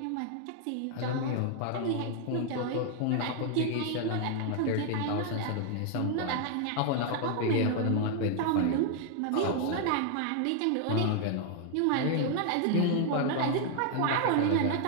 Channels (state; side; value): different; both; correlation 0.00